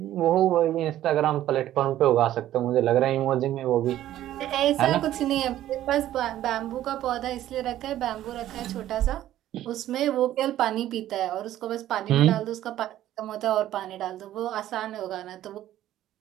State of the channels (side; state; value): left; quieter; 13.1 dB